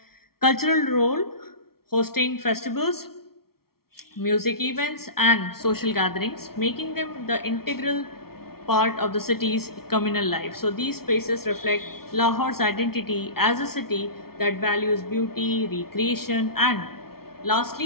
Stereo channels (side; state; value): right; late; 0.94 ms